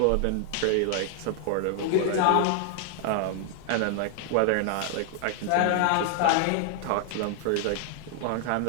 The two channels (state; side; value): different; both; correlation 0.00